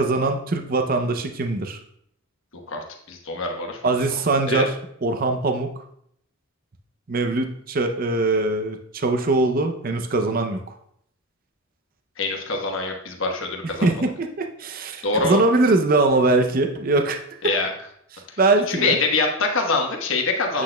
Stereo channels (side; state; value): both; normal; correlation 0.15